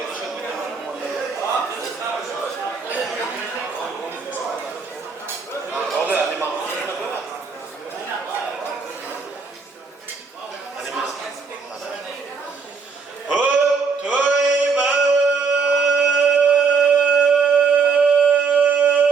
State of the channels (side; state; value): left; quieter; 5.1 dB